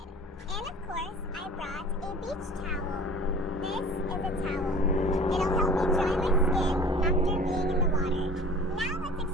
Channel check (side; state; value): both; normal; correlation 0.44